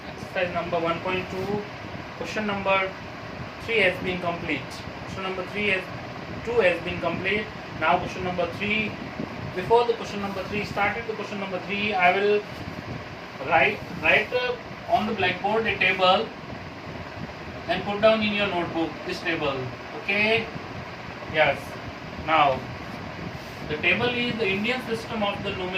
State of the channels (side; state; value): both; identical; correlation 1.00